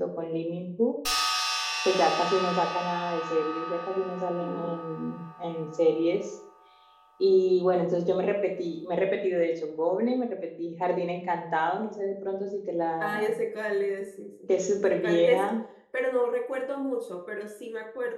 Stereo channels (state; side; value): identical; both; correlation 1.00